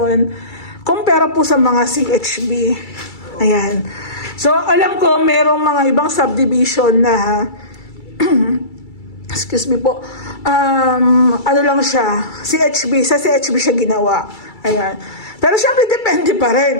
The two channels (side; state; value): right; late; 2.3 ms